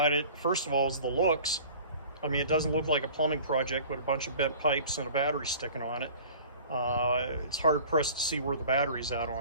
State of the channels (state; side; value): inverted; both; correlation -0.45